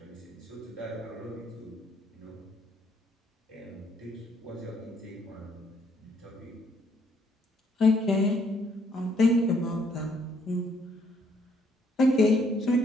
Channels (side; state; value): both; normal; correlation 0.68